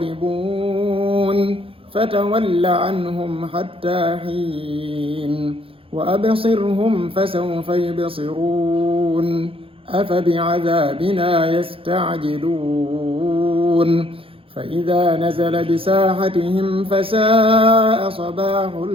فتول عنهم حتى حين وأبصرهم فسوف يبصرون أفبعذابنا يستعجلون فإذا نزل بساحتهم فساء صباح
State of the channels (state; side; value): late; left; 0.27 ms